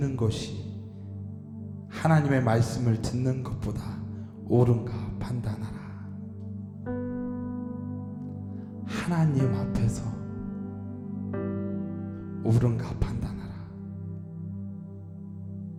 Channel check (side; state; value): both; identical; correlation 1.00